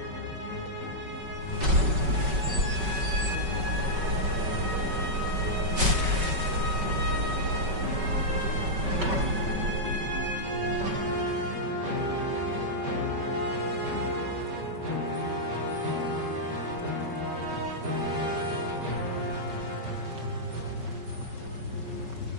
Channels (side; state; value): left; late; 5.3 ms